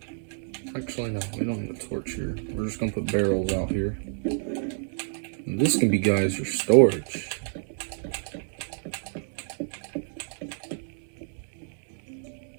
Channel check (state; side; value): silent; left; digital silence